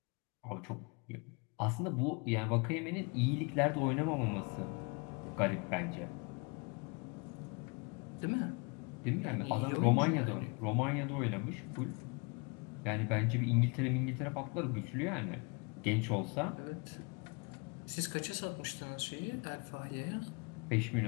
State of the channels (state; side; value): quieter; right; 31.3 dB